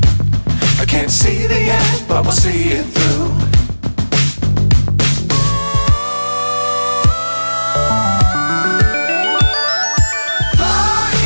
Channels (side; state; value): both; inverted; correlation -1.00